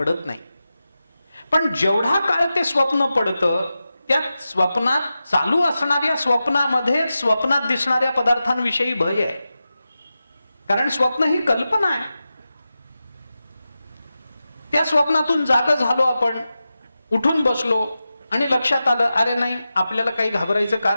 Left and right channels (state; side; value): inverted; both; correlation -0.92